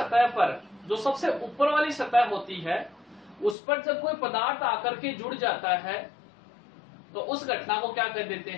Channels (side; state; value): right; drops out; at 3.6 s